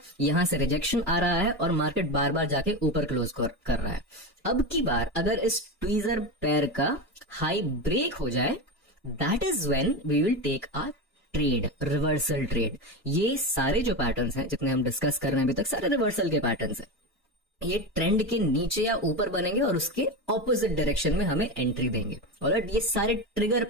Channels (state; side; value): normal; both; correlation 0.18